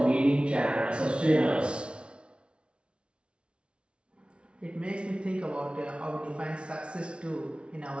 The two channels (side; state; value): left; late; 0.058 ms